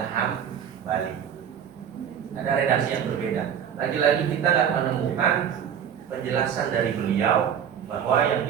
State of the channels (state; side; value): quieter; left; 8.6 dB